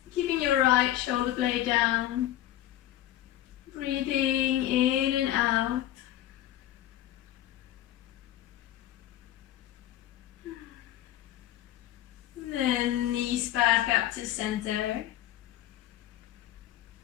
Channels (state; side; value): quieter; right; 13.3 dB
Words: Keeping your right shoulder blade down. Breathing in and out. Then knees back up to center.